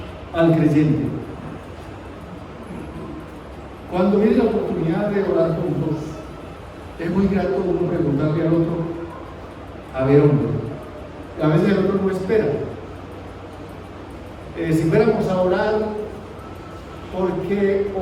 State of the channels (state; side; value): identical; both; correlation 1.00